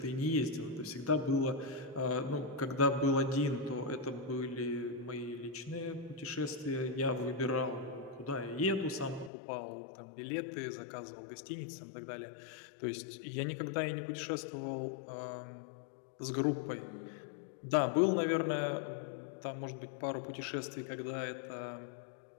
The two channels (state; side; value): drops out; right; at 9.3 s